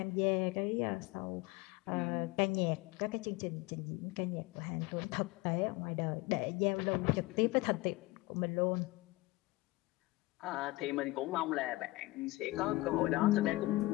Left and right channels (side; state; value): right; quieter; 20.4 dB